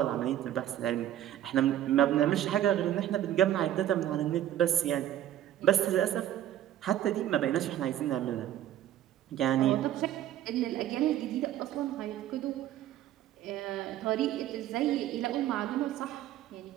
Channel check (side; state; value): left; quieter; 12.0 dB